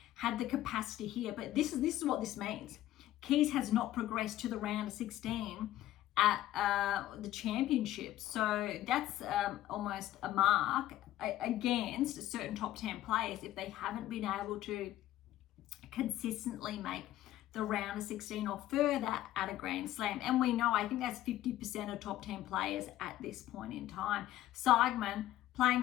had the capacity here, but this is what this means. Keys has not progressed to the round of 16 at the championships, so that's almost a mark against certain top 10 players if they haven't been able to consistently make the round of 16 or further at a Grand Slam. And we know, I think that's 50% of top 10 players at this point in time. Sigmund playing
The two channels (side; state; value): right; quieter; 14.1 dB